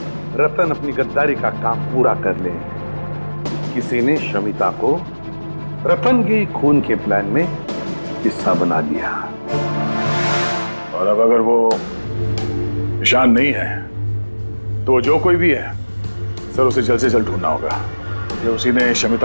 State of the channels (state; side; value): inverted; both; correlation -1.00